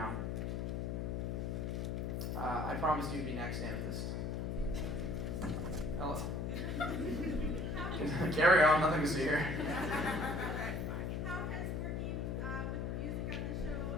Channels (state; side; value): noise; left; hum, 1 dB below the sound